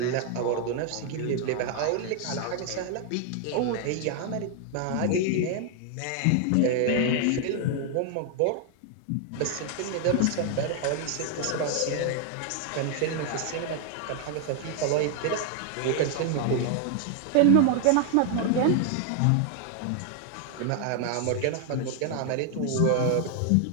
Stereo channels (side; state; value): both; different; correlation 0.00